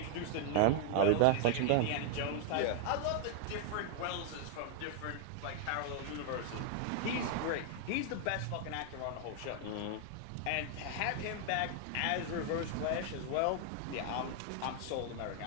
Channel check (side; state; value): both; different; correlation 0.00